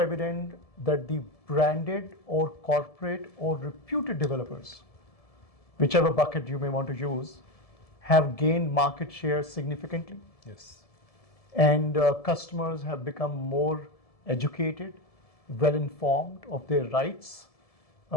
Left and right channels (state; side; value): late; right; 1.7 ms